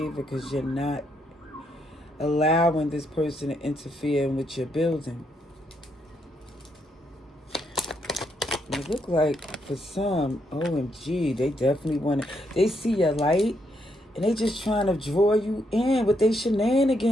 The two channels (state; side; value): normal; both; correlation 0.77